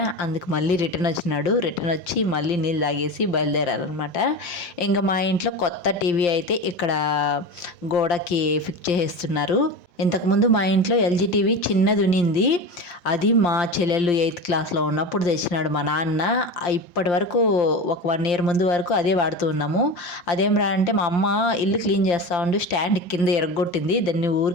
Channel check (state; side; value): late; right; 5.7 ms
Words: అందుకు మళ్ళీ రిటర్న్ వచ్చినాడు. రిటర్న్ వచ్చి మళ్ళీ నీళ్ళు తాగేసి బయలుదేరారనమాట. ఇంకా మా ఇంట్లో కొత్త టీవీ అయితే ఇక్కడ గోడకి ఫిక్స్ చేసేస్తున్నారు. ఇంతకుముందు మా ఇంట్లో ఎల్జీ టీవీ చిన్నది ఉన్నింది, అది మా చెల్లెళ్ళు 8th క్లాస్లో ఉన్నప్పుడు తెచ్చినాడు మా నాన్న. ఇప్పటి వరకు ఒక 1 year ముందు వరకు అదే వాడుతూ ఉన్నాము. అదేం రా అంటే మా అమ్మ ఇల్లు క్లీన్ చేస్తూ ఉండి స్టాండ్ కింద ఎరగొట్టింది, దాన్ని